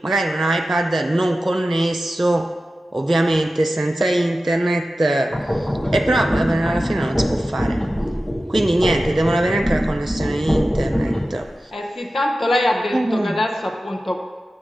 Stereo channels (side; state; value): both; normal; correlation 0.94